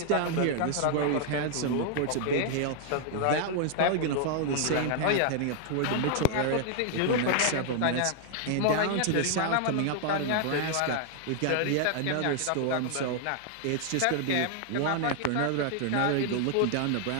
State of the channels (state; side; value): different; both; correlation 0.00